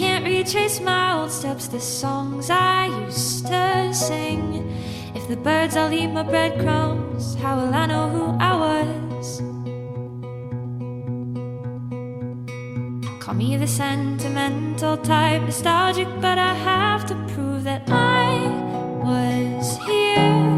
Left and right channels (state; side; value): identical; both; correlation 1.00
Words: retrace my old steps, the songs I used to sing. If the birds all eat my breadcrumbs, how will I know who I was? Call me the sentimental type, nostalgic, but I have to prove that I was here.